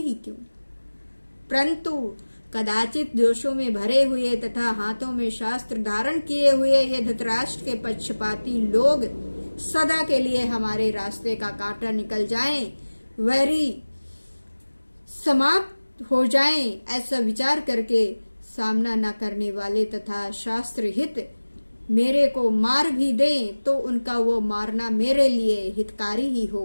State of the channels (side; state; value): both; inverted; correlation -1.00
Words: क्यों? परंतु कदाचित दोषों में भरे हुए तथा हाथों में शास्त्र धारण किए हुए ये धृतराष्ट्र के पक्षपाती लोग सदा के लिए हमारे रास्ते का कांटा निकल जाएं, वैरी समाप्त हो जाएं, ऐसा विचार करके सामना न करने वाले तथा शास्त्र हित मेरे को मार भी दें तो उनका वो मारना मेरे लिए हितकारी ही